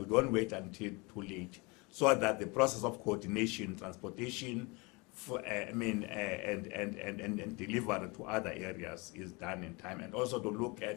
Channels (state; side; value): quieter; right; 27.4 dB